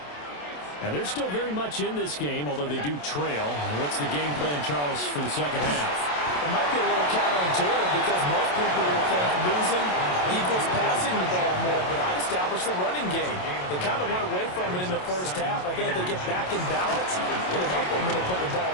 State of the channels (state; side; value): late; right; 27 ms